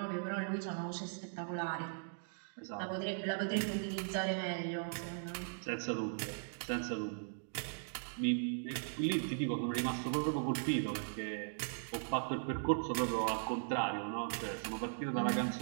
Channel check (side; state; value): left; silent; digital silence